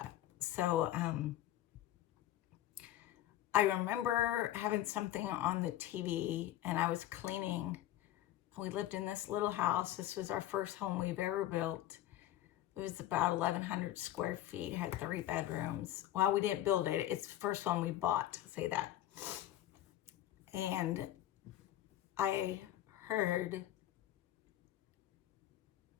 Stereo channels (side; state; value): right; quieter; 13.5 dB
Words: So I remember having something on the TV, and I was cleaning. We lived in this little house. This was our first home we've ever built. It was about 1,100 square feet, had 3 bedrooms. Well, we didn't build it. It's the first one we bought, say that. And I heard,